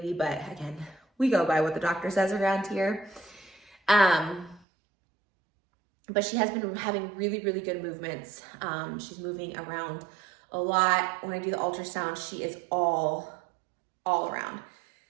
but again, we go by what the doctor says around here. But she has been having really, really good movements. She's moving around a lot. When I do the ultrasound, she is all around.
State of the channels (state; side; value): drops out; left; at 4.6 s